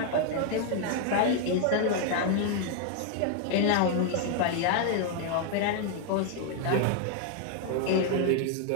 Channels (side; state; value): both; different; correlation 0.00